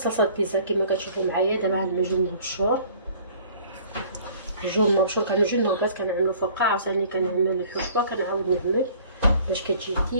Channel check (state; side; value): inverted; both; correlation -0.53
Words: بيتزا كما كتشوفوا معايا. دابا عندنا جبن مبشور. الجبن مبشور كنجي النوغات كنعملو فوقها، عاوتاني كنعمل الحشوه كنعاود نعمل باش كتجي